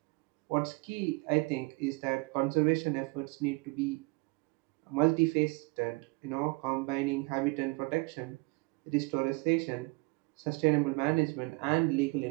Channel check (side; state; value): left; quieter; 27.6 dB